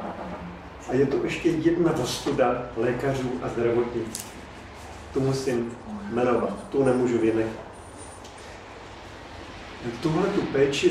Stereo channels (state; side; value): identical; both; correlation 1.00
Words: A je to ještě jedna ostuda lékařů a zdravotnictví. Tu musím jmenovat, tu nemůžu vynechat. Tuhle tu